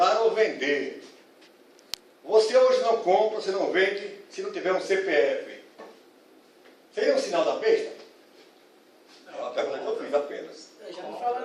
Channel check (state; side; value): identical; both; correlation 1.00